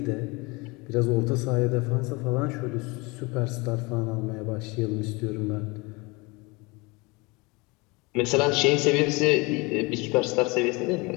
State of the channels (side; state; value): right; quieter; 26.0 dB